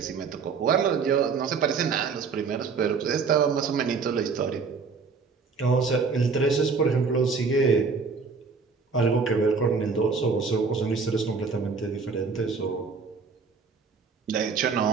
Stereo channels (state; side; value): quieter; left; 5.0 dB